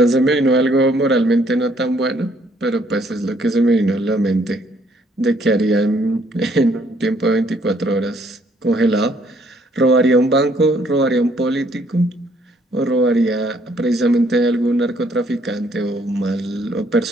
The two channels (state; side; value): normal; both; correlation 0.66